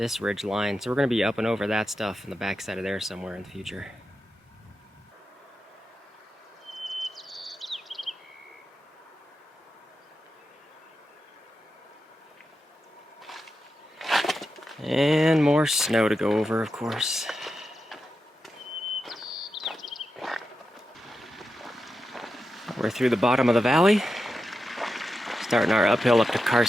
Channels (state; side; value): normal; both; correlation 0.88